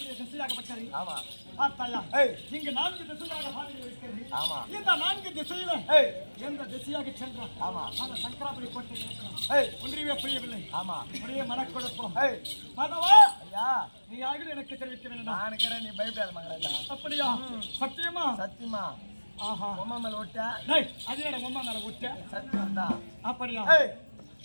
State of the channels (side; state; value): both; inverted; correlation -1.00